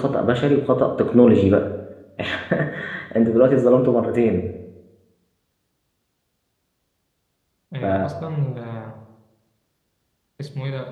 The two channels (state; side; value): identical; both; correlation 1.00